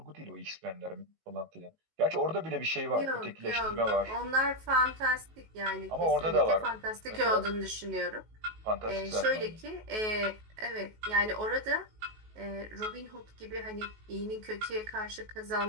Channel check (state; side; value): late; left; 19 ms